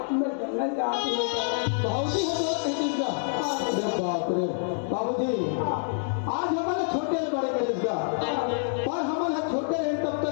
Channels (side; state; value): right; silent; 60 dB below the other